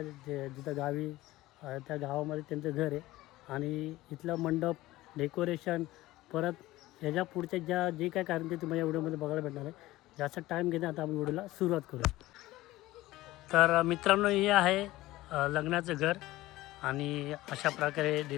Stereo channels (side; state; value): right; quieter; 17.5 dB